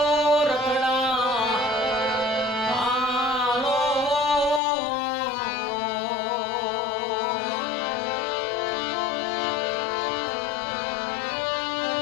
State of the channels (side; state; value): right; drops out; at 4.6 s